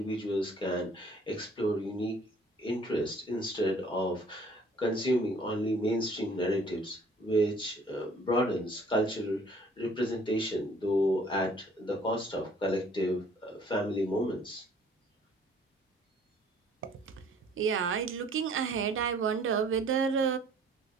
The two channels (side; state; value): both; normal; correlation 0.56